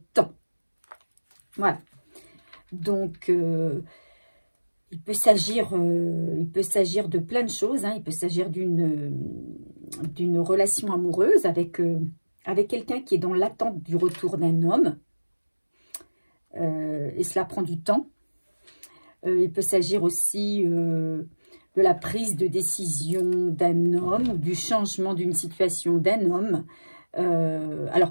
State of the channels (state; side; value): inverted; both; correlation -1.00